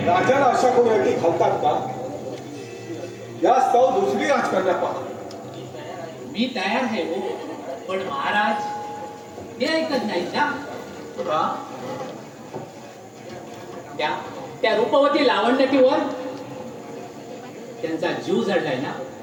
राजाला अशा कोणी अटी घालतात का? यास्तव दुसरी राजकन्या पहा. मी तयार आहे हो, पण महाराज ते ऐकत नाही ना. त्या रूपवती लावण्यतीवर त्यांचा जीव जडलाय ना.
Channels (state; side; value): identical; both; correlation 1.00